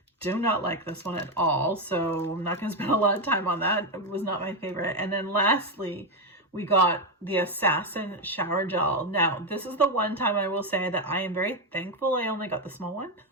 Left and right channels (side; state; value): both; normal; correlation 0.08